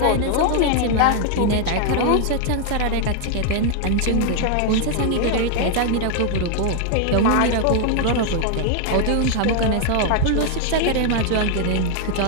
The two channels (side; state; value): both; different; correlation 0.00